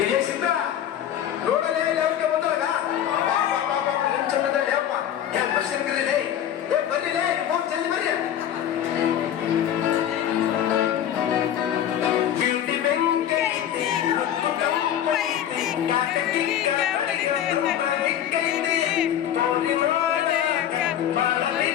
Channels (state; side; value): quieter; right; 10.4 dB